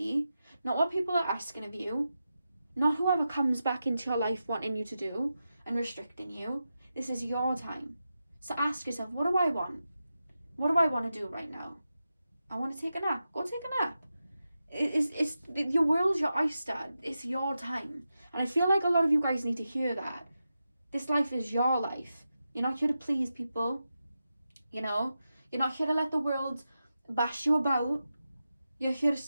not what people are asking of you, not whoever comes back into your life wanting you to do and restricting you. This is your time. So ask yourself, what do I want? What do I want to do right now? I want to take a nap. Go take a nap. It's your world's your oyster. It's your time. And I feel like a lot of you guys need to hear that. This life is your life. You're not here to please people. You're not here to let the world bash you about. You're here to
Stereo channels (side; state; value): both; inverted; correlation -0.90